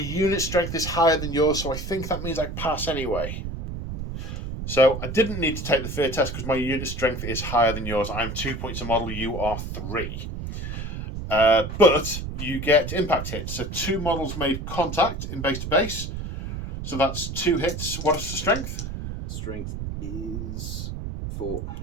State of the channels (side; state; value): right; noise; rumble, 6 dB below the sound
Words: strength is higher than yours, so I think that means I pass anyway. So I didn't need to take the fear test because my unit strength is higher than yours. I'm 2 points a model. You are 3. But you get impact hits. So 2 models made contact in base to base. So that's 2 hits. What is the strength? Strength is 4.